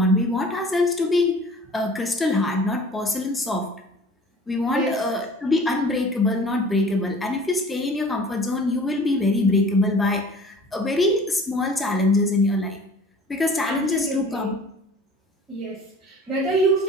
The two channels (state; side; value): normal; both; correlation 0.47